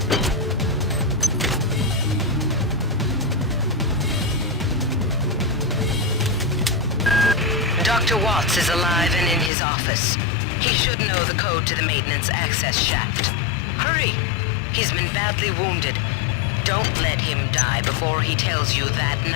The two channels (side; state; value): right; drops out; at 9.5 s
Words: Dr. Watts is alive and in his office. He should know the code to the maintenance access shaft. Hurry! He's been badly wounded. Don't let him die before he tells you that